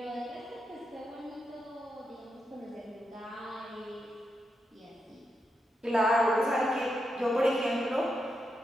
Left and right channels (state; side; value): normal; both; correlation 0.85